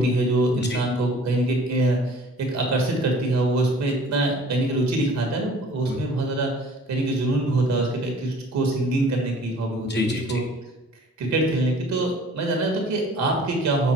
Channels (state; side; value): normal; both; correlation 0.50